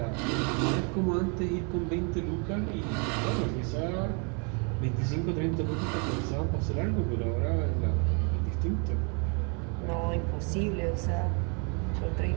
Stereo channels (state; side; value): quieter; left; 36.2 dB